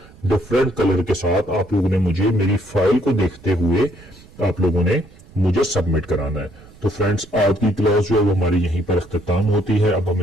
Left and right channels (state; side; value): noise; right; rumble, 23 dB below the sound